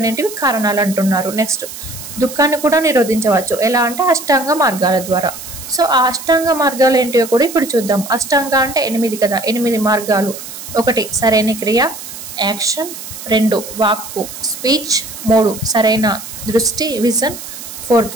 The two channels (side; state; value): right; noise; hiss, 12 dB below the sound